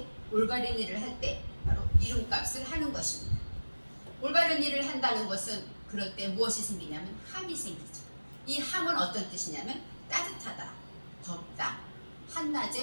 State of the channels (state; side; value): inverted; both; correlation -1.00